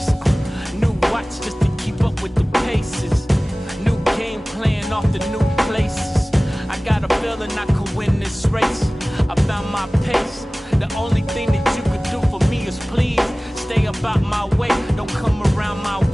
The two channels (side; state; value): both; normal; correlation 0.98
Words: new watch just to keep up with the paces, new game plan off the new places. I got a feeling I could win this race. I found my pace. The only thing that you could do for me is please stay up about my way. Don't come around my